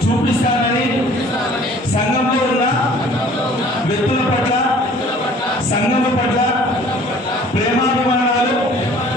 చూపిస్తానని, సంఘంలో ఉన్న వ్యక్తుల పట్ల సంఘం పట్ల ప్రేమాభిమానాలు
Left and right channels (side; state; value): both; normal; correlation 0.52